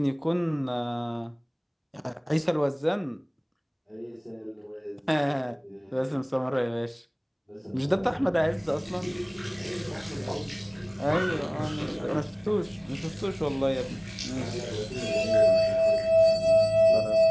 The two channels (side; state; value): both; identical; correlation 1.00